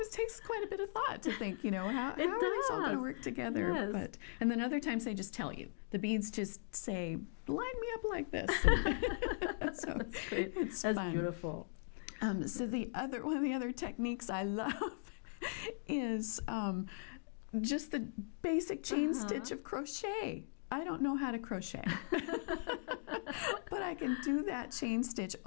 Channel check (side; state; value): right; silent; digital silence